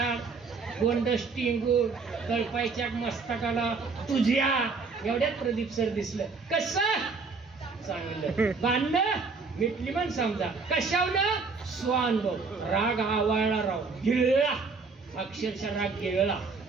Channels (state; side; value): quieter; left; 4.5 dB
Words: गोंड स्टिंगूड, कळपायच्या मस्तकाला तुझ्या एवढ्यात प्रदीप सर दिसलं. कसं चांगलं. भांडणं मिटली म्हण समजा. कशावनं? स्वानुभव. राग आवाळला, राव गिळला, अक्षरशः राग गिळला.